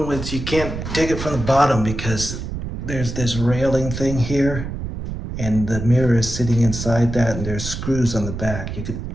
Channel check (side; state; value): right; noise; rumble, 6 dB below the sound